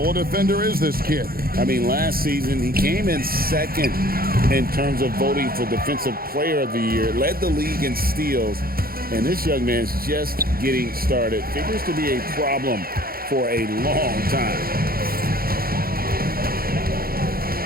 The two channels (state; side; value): late; left; 0.43 ms